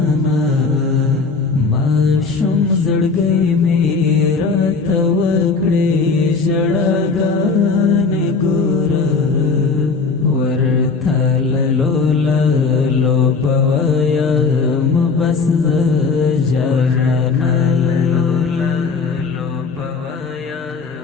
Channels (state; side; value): quieter; right; 4.6 dB